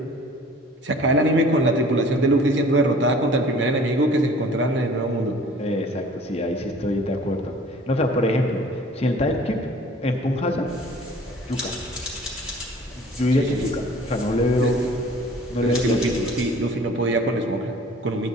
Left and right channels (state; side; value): normal; both; correlation 0.50